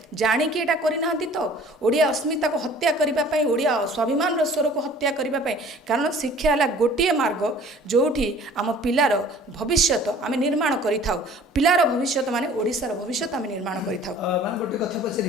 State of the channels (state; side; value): normal; both; correlation 0.50